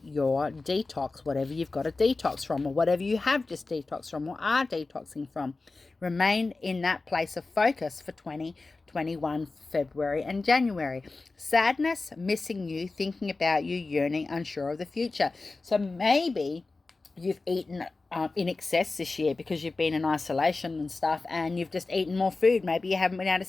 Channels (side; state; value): right; quieter; 3.6 dB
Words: your detox, whatever you've got to detox from, or whatever you have just detoxed from or are detoxing from. Remain in that place of focus for 2021, February and January. Sadness, missing you, thinking about you, yearning, unsure of the future. So maybe you've eaten in excess this year because you've been in isolation and stuff, and you've just eaten more food. Maybe you haven't been able